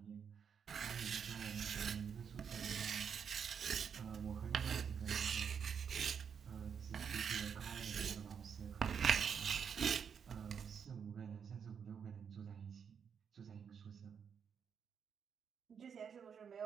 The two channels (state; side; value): quieter; left; 7.1 dB